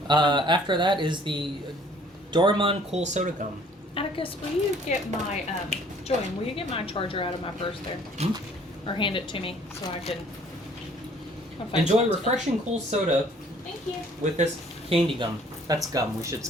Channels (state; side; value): normal; both; correlation 0.57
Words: After that is the Doraemon Cool Soda Gum. Atticus, will you get my Julian? Will you get my charger out of my purse there, or hand it to me so I can? I'll find Enjoy something. refreshing cool soda Thank you. with this candy gum. That's gum. We should